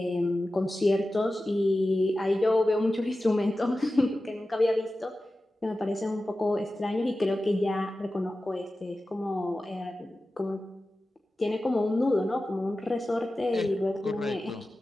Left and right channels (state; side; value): normal; both; correlation 0.94